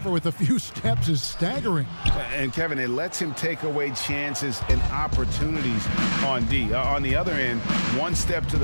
with a few steps is staggering. And Kevin, it lets him take away chances and opportunities on D. On the other end, one step to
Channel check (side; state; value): both; inverted; correlation -1.00